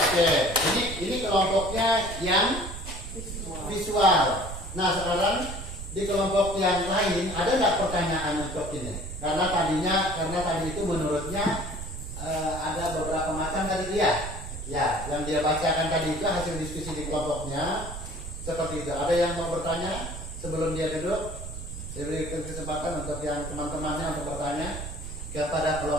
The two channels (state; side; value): noise; right; rumble, 8 dB below the sound